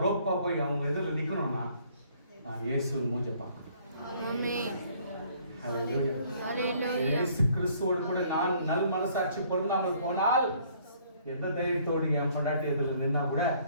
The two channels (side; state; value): both; inverted; correlation -0.61